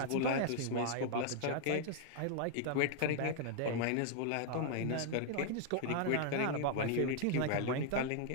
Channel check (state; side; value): different; both; correlation 0.00